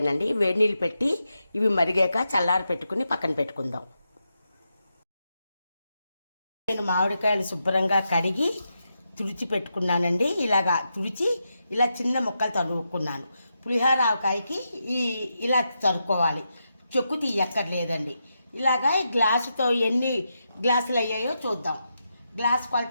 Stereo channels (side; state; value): both; inverted; correlation -0.86